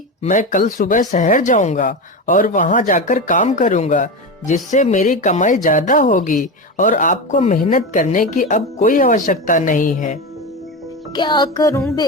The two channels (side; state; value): both; normal; correlation 0.20